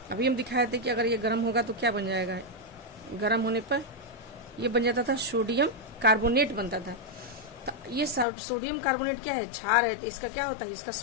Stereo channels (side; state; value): right; drops out; at 8.2 s